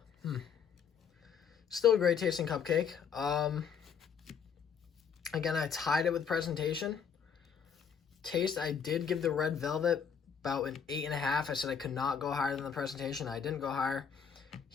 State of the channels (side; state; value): right; quieter; 7.0 dB